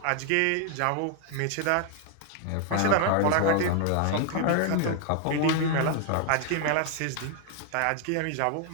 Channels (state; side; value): different; both; correlation 0.00